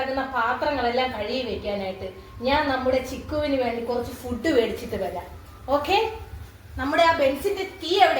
പാത്രങ്ങളെല്ലാം കഴുകി വെക്കാനായിട്ട്. ഞാൻ നമ്മുടെ ചിക്കുവിന് വേണ്ടി കുറച്ച് ഫുഡ് മേടിച്ചിട്ട് വരാം. ഓക്കെ? നമ്മുടെ ആ ബെൻസിന്റെ കീ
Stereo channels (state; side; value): identical; both; correlation 1.00